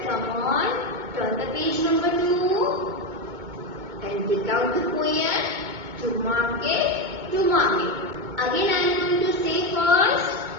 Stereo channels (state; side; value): late; left; 2.2 ms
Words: come on. Turn the page number 2. And take out the poem. To market, to market. Again I am going to say first.